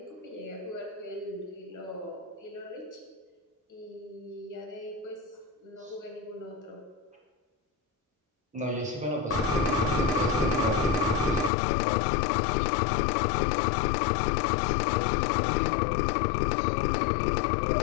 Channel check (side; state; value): right; drops out; at 11.5 s